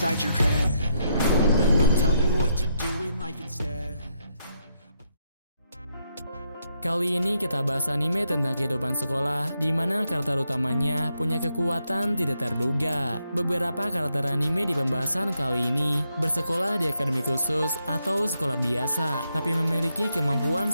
your head. They'll tell you what to do in life instead. Kali ini kita bahas anime tentang kehidupan sekolah, di mana karakter utamanya punya kekuatan tidak terduga. Beberapa karakter anime di pembahasan kali ini bersekolah di akademi khusus atau sekolah biasa, tapi memiliki kemampuan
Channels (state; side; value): inverted; both; correlation -0.79